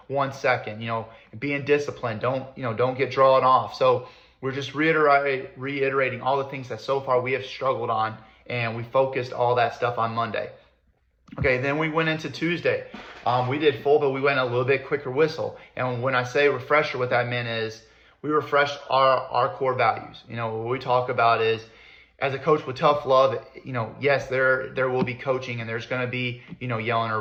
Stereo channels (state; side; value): identical; both; correlation 1.00